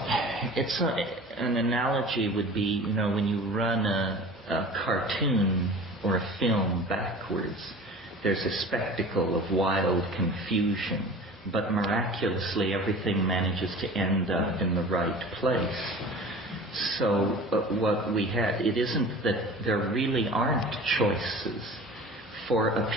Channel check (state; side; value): normal; both; correlation 0.40